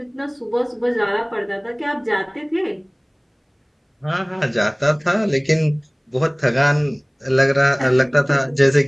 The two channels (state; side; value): identical; both; correlation 1.00